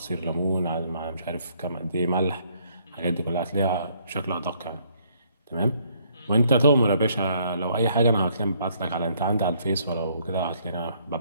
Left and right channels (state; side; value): inverted; both; correlation -0.67